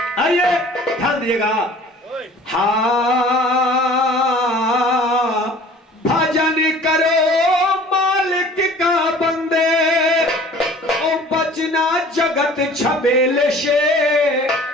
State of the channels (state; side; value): normal; both; correlation 0.48